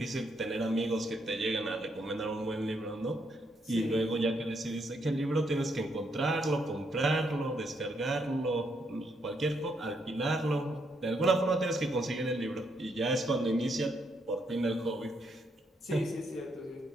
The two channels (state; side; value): normal; both; correlation 0.76